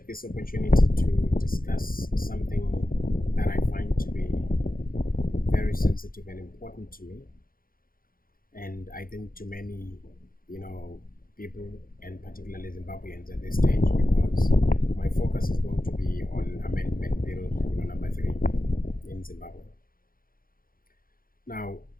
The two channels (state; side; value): late; right; 0.42 ms